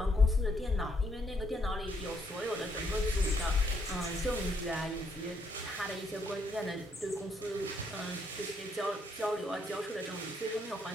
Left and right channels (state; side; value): normal; both; correlation 0.73